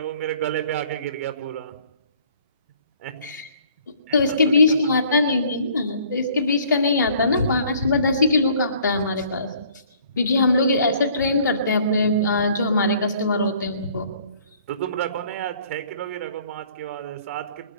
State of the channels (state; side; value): inverted; both; correlation -0.57